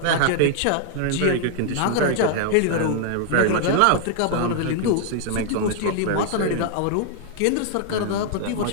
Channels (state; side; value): different; both; correlation 0.00